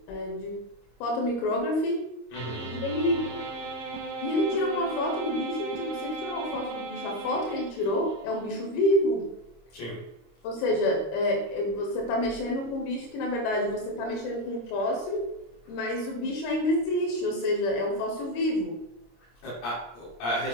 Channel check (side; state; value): right; late; 26 ms